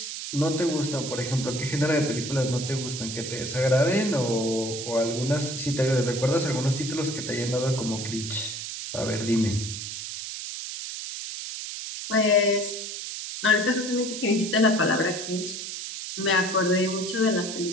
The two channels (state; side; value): noise; right; hiss, 7 dB below the sound